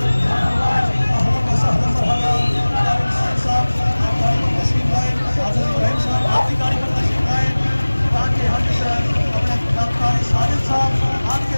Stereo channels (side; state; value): both; inverted; correlation -1.00